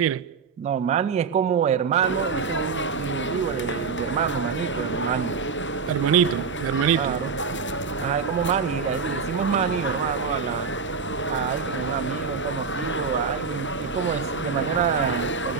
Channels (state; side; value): quieter; left; 5.5 dB